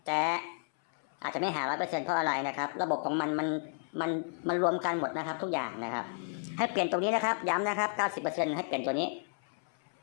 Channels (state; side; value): silent; right; 56 dB below the other